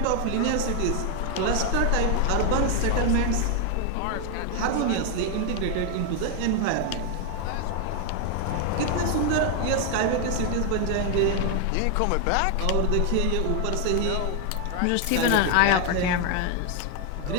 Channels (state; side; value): different; both; correlation 0.00